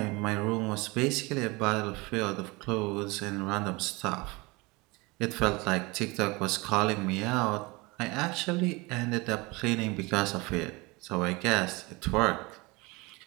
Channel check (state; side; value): quieter; left; 24.8 dB